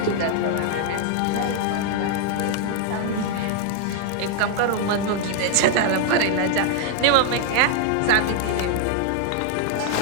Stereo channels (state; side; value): different; both; correlation 0.00